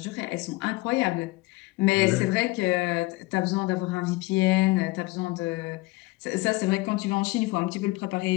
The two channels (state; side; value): quieter; right; 21.6 dB